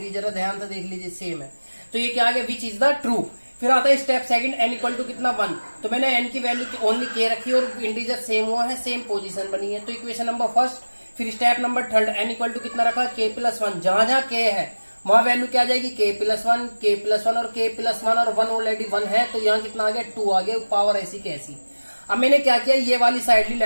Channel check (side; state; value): both; inverted; correlation -1.00